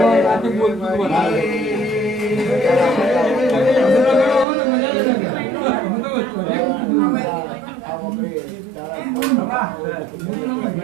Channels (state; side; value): drops out; left; at 4.5 s